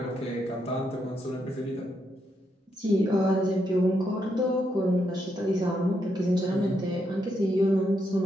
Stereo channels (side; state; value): both; normal; correlation 0.79